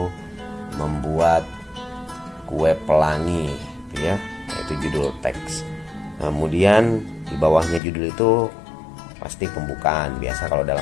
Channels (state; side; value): drops out; right; at 7.8 s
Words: membuat kue pelangi gitu ya. Itu judul teks. Kemudian di bawahnya judul itu pasti pembukaan. Biasa kalau